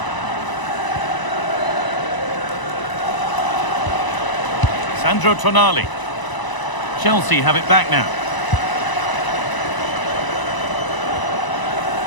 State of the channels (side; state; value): right; late; 1.0 ms